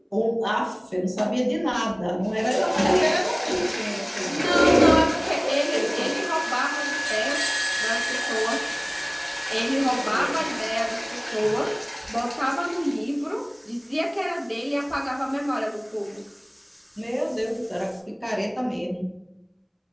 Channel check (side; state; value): both; identical; correlation 1.00